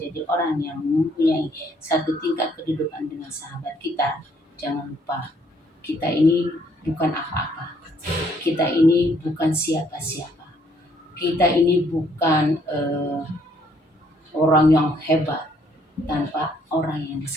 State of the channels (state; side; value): normal; both; correlation 0.67